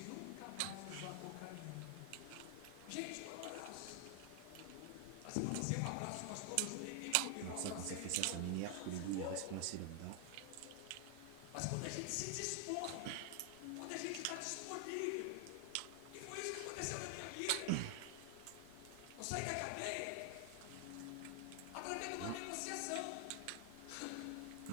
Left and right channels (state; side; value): different; both; correlation 0.00